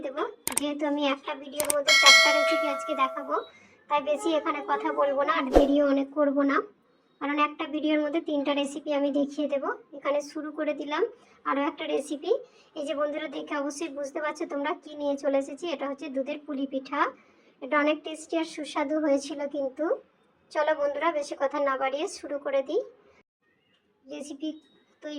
দেবো। যেহেতু আমি একটা ভিডিওর মধ্যে 4টা রেসিপি আজকে দেখাবো, তাই বেশি এখানে কথা বলবো না, আর ভিডিও অনেক করবো না, কারণ একটা ভিডিওর মধ্যে 3টা রেসিপি আমি দেখিয়ে দেবো। এখানে শুরু করে দিলাম আরও একটা রেসিপি। এই যে বন্ধুরা, দেখে অবশ্যই বুঝতে পারছো তোমরা কি নিয়ে চলে এসেছি। এটা হচ্ছে দুধের পুলি পিঠা। এটা অনেক টেস্টি আর সুস্বাদু হয়েছিল কিন্তু। চলো বন্ধুরা, বেশি কথা না বাড়িয়ে শুরু করে দিই। রেসিপি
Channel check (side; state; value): both; identical; correlation 1.00